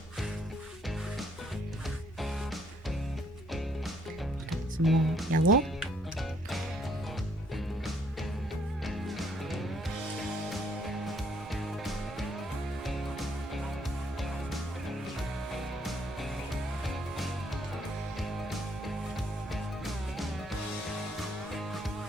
Some more yellow.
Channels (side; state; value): both; normal; correlation 0.67